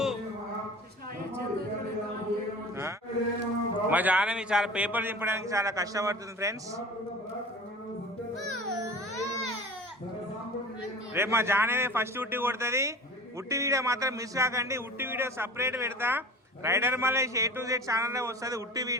మా జానవి చాలా పేపర్ చింపడానికి చాలా కష్టపడుతుంది ఫ్రెండ్స్. రేపు మా జానవి ఫస్ట్ ఉట్టి కొడుతుంది. ఉట్టి వీడియో మాత్రం మిస్ కాకండి. ఉట్టి వీడియో సపరేట్ పెడతా, rider Malesh A to Z ఛానల్లో వస్తుంది ఉట్టి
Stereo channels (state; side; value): normal; both; correlation 0.38